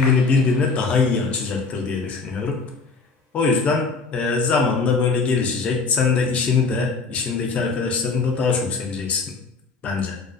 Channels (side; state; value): right; quieter; 4.3 dB